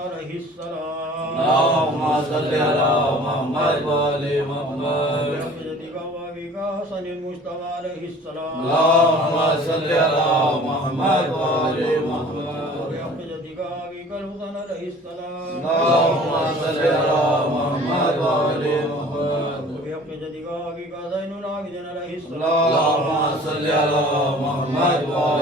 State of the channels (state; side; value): normal; both; correlation 0.48